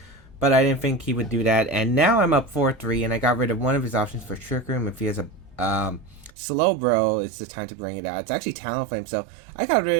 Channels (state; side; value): drops out; left; at 6.3 s